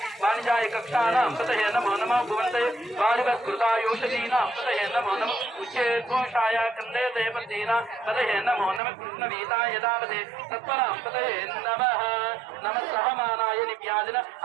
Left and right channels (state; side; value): drops out; left; at 8.8 s